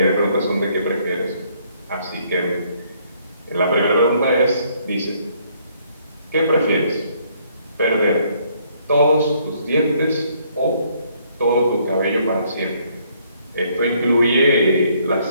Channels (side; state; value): both; inverted; correlation -0.67